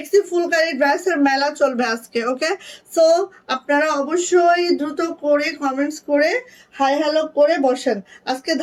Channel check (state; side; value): identical; both; correlation 1.00